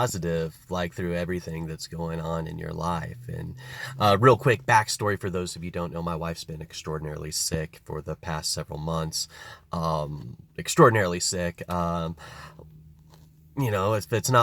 like through everything that's going on in your life?" And real quick backstory for those of you who don't know, my wife's been extraordinarily sick for the past several months. Extraordinarily sick. If it's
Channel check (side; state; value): both; identical; correlation 1.00